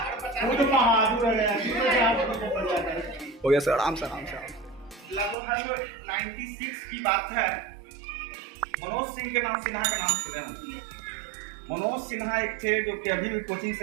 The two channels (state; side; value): drops out; left; at 5.4 s